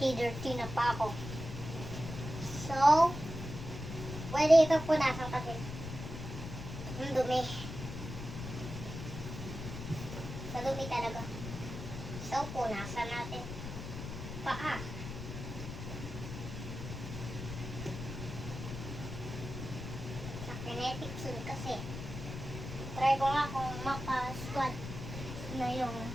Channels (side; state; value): left; noise; rumble, 8 dB below the sound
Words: na pa ako. So, pwede ito punasan kasi. Ang dumi. Sa dumi talaga. So, punasan natin. Paa. Sa kinetic soon kasi. Try ko nga kung maka-squat na yung